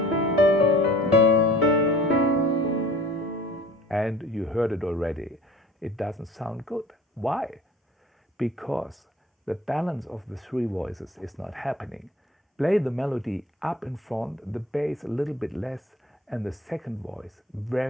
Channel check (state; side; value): normal; both; correlation 0.47